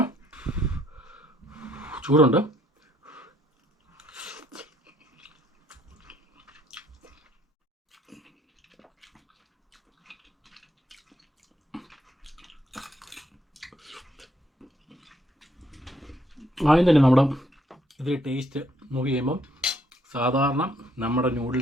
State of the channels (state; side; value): normal; both; correlation 0.69